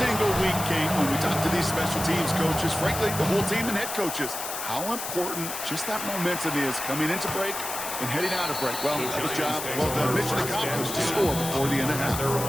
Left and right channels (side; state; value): left; noise; hiss, 6 dB below the sound